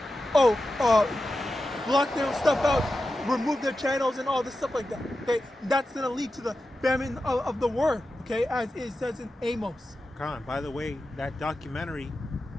Block their stuff out, remove their channels and all this stuff like that. Okay, that's gonna lead to the famine of the word. Okay, as it says in Amos. Khan, by the way, that documentary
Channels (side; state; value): both; normal; correlation 0.92